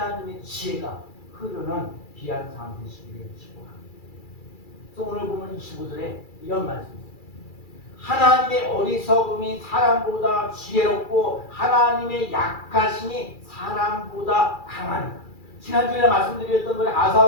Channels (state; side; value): late; right; 2.3 ms